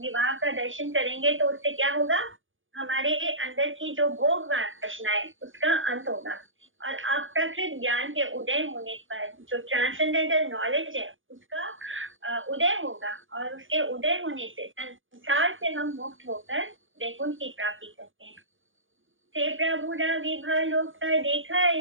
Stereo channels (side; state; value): left; late; 0.57 ms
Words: का दर्शन करेंगे, तो उससे क्या होगा, हमारे अंदर की जो भोग वासना है उसका अंत होगा और अप्राकृत ज्ञान के उदय होने पर जो ट्रांसेंडेंटल नॉलेज है उसका उदय होगा और उसके उदय होने से संसार से हम मुक्त होकर वैकुंठ की प्राप्ति करते हैं। ते प्रभु विभा लोक देखा